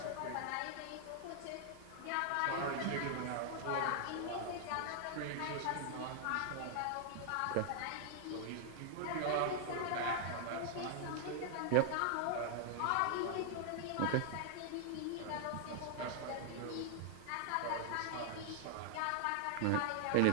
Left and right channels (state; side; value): different; both; correlation -0.01